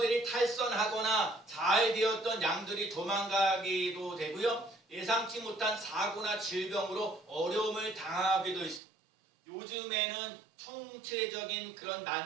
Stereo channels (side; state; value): left; drops out; at 8.8 s